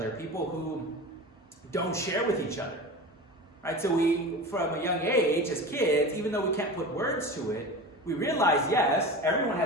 people who don't share with each other, right? So we, from a young age, as kids, even though we can't put words to it, we realize, yes, everyone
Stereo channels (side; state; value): both; normal; correlation 0.31